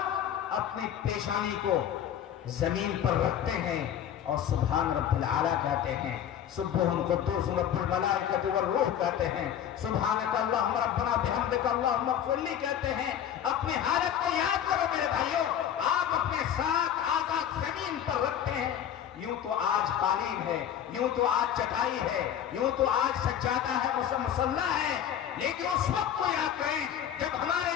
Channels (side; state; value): right; quieter; 9.7 dB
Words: اپنی پیشانی کو زمین پر رکھتے ہیں اور سبحان رب العالی کہتے ہیں، سبحان قدوس رب الملائکۃ والروح کہتے ہیں، سبحانک اللہم ربنا بحمدک اللہم اغفر لی کہتے ہیں، اپنی حالت کو یاد کرو میرے بھائیوں۔ آپ اپنے 7 آزاد زمین پر رکھتے ہیں، یوں تو آج قالین ہے، یوں تو آج چٹائی ہے، یوں تو آج سجادہ ہے، مصلی ہے، لیکن اس وقت کو یاد کریں جب ہمارے